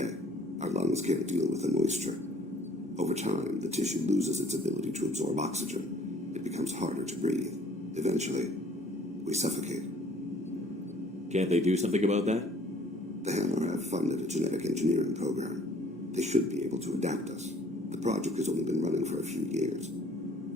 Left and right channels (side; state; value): both; normal; correlation 0.57